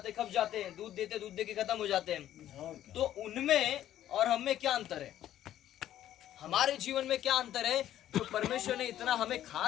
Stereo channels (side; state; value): right; quieter; 12.1 dB